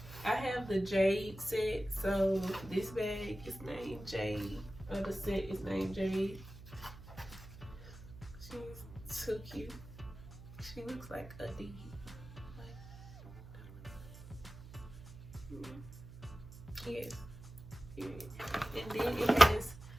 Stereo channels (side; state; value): right; noise; hum, 15 dB below the sound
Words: I have the Jade set, so this bag is named Jade. The set is named Jade. She's so cute. She looks like a D. Yes. And then it has